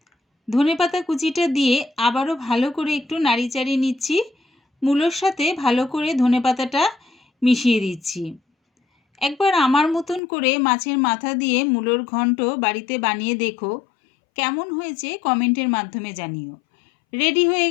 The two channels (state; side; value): drops out; right; at 10.2 s